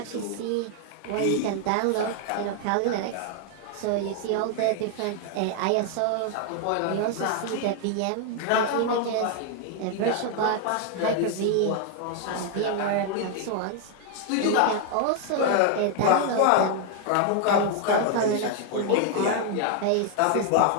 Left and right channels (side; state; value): both; different; correlation 0.00